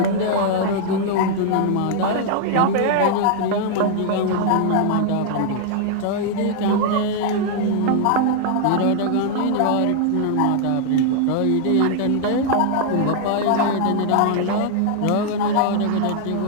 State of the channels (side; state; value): both; different; correlation -0.01